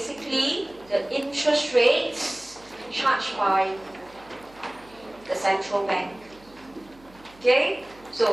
the interest rates charged by the central bank. Okay,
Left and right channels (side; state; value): right; noise; hum, 26 dB below the sound